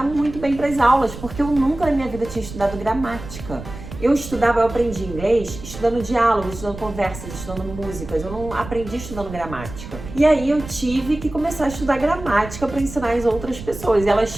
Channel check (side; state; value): right; noise; rumble, 12 dB below the sound